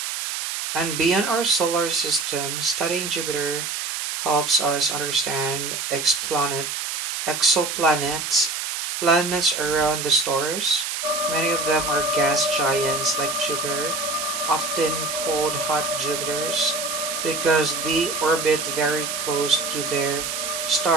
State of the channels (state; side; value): noise; right; hiss, 3 dB below the sound